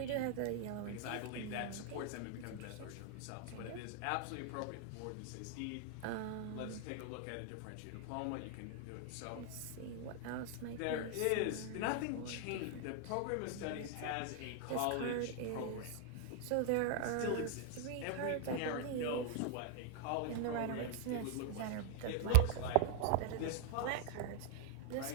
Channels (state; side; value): different; both; correlation 0.00